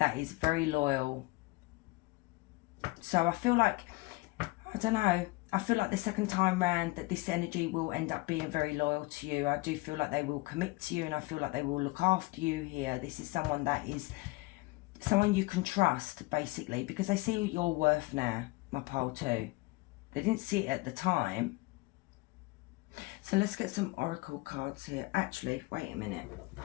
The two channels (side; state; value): right; quieter; 22.7 dB